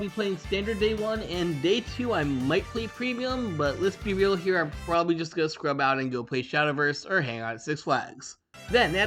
playing Standard Day 1, and Day 2 I might play Premium, but let's be real here, I'm probably just gonna scrub out and go play Shadowverse or hang out at Six Flags. Then,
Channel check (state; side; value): identical; both; correlation 1.00